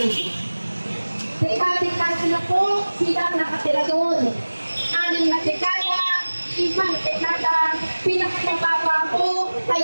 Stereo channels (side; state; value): both; inverted; correlation -1.00